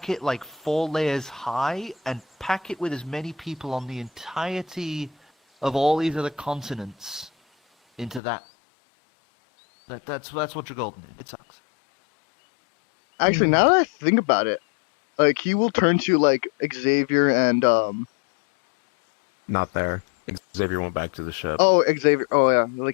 it like 4 layers high and pack it with as many people on the entirety of all these other continents into that. That's what Dragolden is. It sucks. Actually, now that I think about it, like he will turn to like Xavier and Not there. Xavier went back to the ship. oh Xavier. Oh yeah,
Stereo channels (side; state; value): right; drops out; at 8.2 s